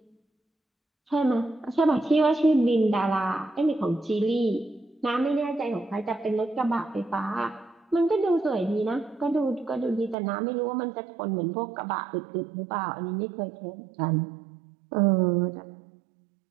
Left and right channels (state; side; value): drops out; left; at 10.2 s